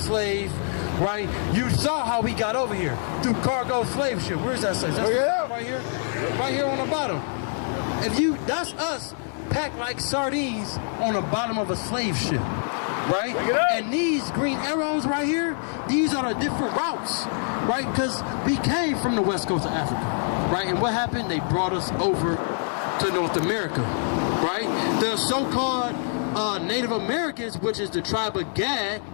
right? You saw how we got over here through cargo slave ship. Where's that slave? Right here? Right here on the bottom. That's us packed like sardines on the bottom of a slave ship, right? And these green arrows right here, these are the different routes, right? Because we came from the west coast of Africa, right? And what happened? They brought us over to North America, right? The so-called Native Americans, which is the tribe of Gad,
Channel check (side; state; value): right; silent; 62 dB below the other